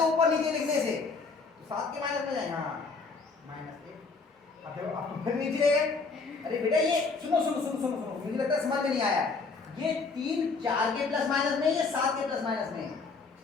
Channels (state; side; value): quieter; right; 4.4 dB